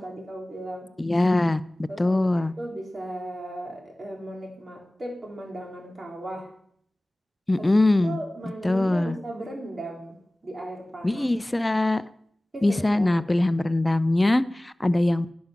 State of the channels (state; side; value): normal; both; correlation 0.98